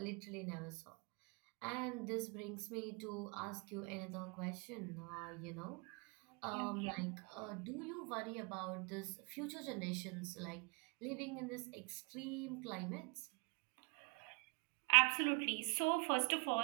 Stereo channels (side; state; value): left; quieter; 32.4 dB